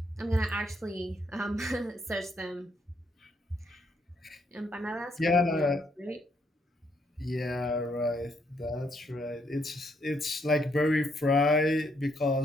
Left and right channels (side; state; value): both; normal; correlation 0.73